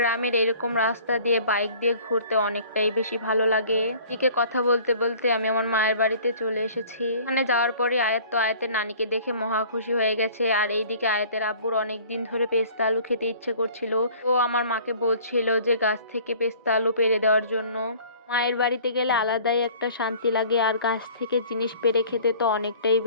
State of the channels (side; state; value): both; inverted; correlation -0.50